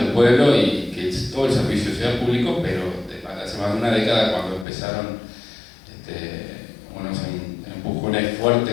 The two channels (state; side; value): drops out; right; at 4.7 s